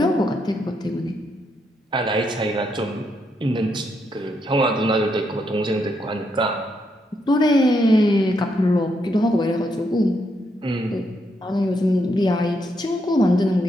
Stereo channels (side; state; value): both; normal; correlation 0.79